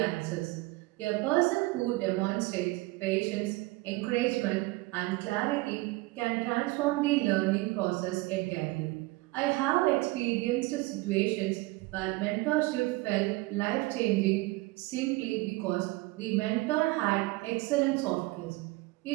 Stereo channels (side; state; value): left; quieter; 21.8 dB